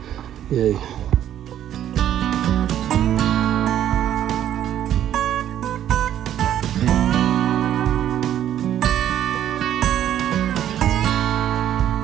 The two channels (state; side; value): quieter; left; 11.0 dB